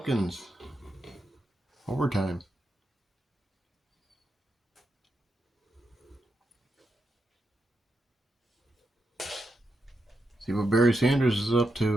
Overtime. See what Barry Sanders is up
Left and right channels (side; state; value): both; normal; correlation 0.85